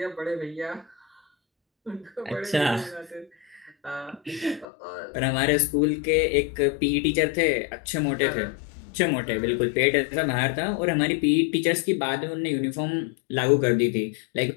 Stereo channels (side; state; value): right; drops out; at 4.7 s